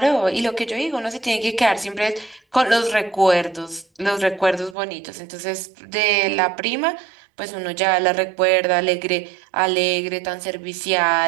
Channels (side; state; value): left; drops out; at 4.8 s